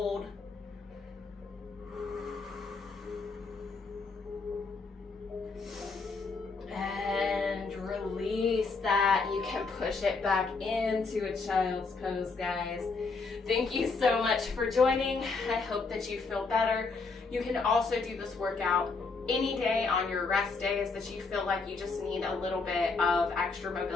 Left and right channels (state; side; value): quieter; right; 4.3 dB